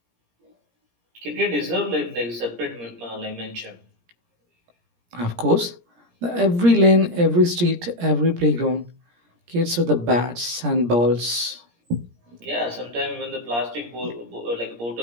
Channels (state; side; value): late; left; 17 ms